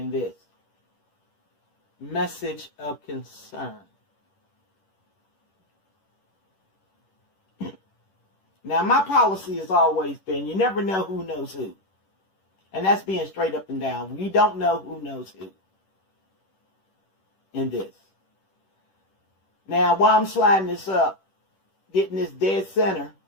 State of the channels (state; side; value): late; right; 10 ms